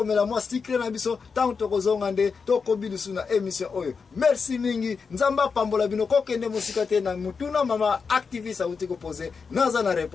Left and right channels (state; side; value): quieter; right; 5.3 dB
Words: mwa secret na biso tangu tokozonga nde tokobilisu na émission oyo. Merci mingi nzamba pambola bino kokende musika te na mutuna mama activiste auti ko poser naza na